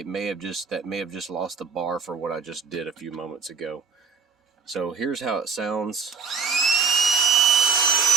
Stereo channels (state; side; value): quieter; left; 5.6 dB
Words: may have just lost the bar for what I just did a few moments ago. So here's how it sounds.